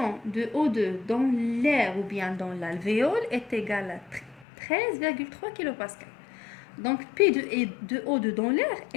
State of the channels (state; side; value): drops out; right; at 4.5 s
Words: de O2 dans l'air ou bien dans l'alvéole est égale à 13,3 kPa. Donc P de O2 dans l'air,